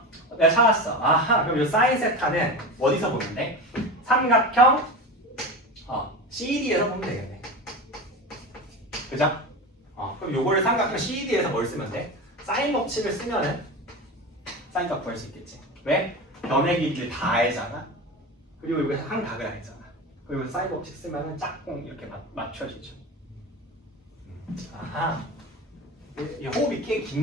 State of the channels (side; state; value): both; normal; correlation 0.26